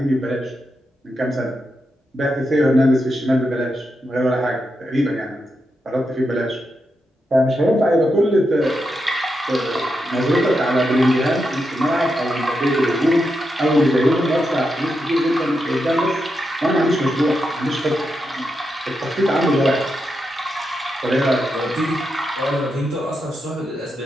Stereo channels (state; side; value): normal; both; correlation 0.86